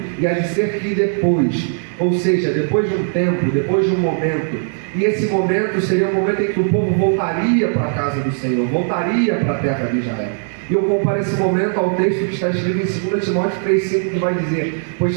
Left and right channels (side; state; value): left; silent; digital silence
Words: e há de ser que depois, ou seja, depois de um tempo, depois de um momento, e esse momento seria o momento em que o povo voltaria para a casa do Senhor, voltaria para a terra de Israel. E eu comparo esse momento ao texto que está escrito em 2 Timóteo 3,5, que vai dizer: pois